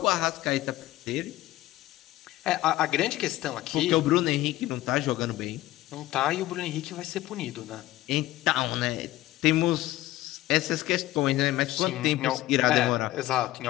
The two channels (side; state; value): right; quieter; 16.2 dB